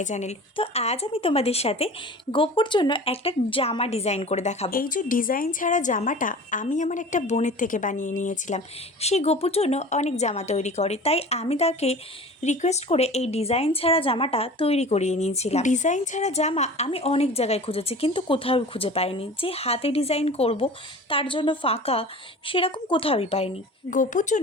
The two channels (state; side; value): normal; both; correlation 0.39